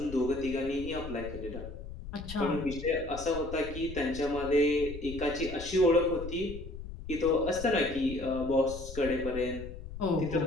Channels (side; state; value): left; noise; rumble, 11 dB below the sound